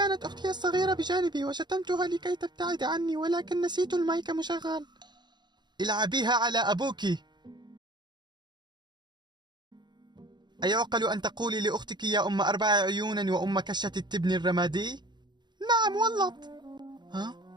أختي الصغيرة بجانبي وشتمتها لكي تبتعد عني، ولكن نسيت المايك مشغل. العبيها على أبوك. أيعقل أن تقولي لأختك يا أم 4 عيون وأم كشة التبن الرمادي؟ نعم والله. ها؟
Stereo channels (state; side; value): late; left; 0.21 ms